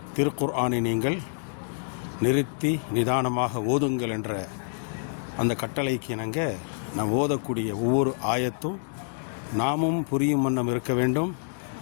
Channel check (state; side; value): silent; right; digital silence